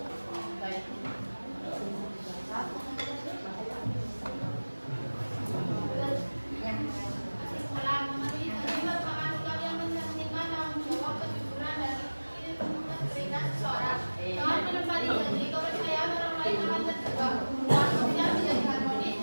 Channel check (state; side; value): inverted; both; correlation -1.00